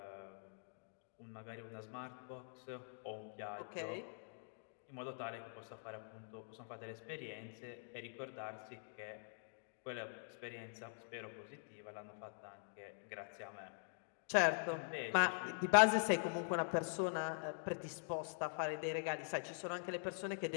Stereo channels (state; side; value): silent; right; digital silence